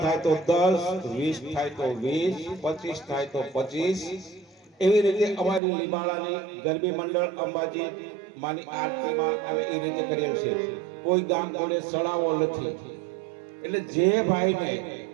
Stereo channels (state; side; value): drops out; left; at 5.6 s